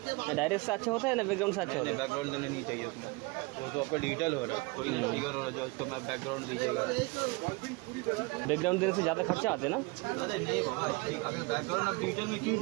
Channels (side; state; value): left; quieter; 25.9 dB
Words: डायरेक्ट से अच्छा होता है ना, बैकग्राउंड से अच्छा होता है? बैकग्राउंड देना नहीं चाहिए उसमें, वो तो आपका डिजिटल हो रहा है, कोई फिगर हो रहा है जो उसको मैं बैकग्राउंड दीजिएगा। बैकग्राउंड देने से ज़्यादा खर्चा आते हैं ना? अरे नहीं बाबा, अगर बैकग्राउंड आप डिजिटल में क्यों